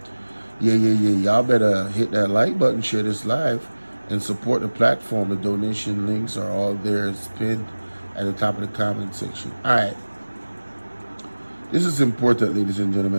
yeah. Y'all better hit that like button, share this live, and support the platform. The donation links are all there. It's pinned at the top of the comment section. All right. This is important, ladies and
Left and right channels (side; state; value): both; inverted; correlation -1.00